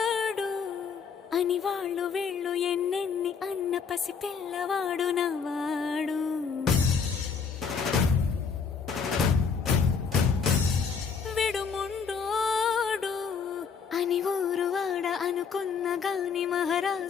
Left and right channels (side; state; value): right; quieter; 6.0 dB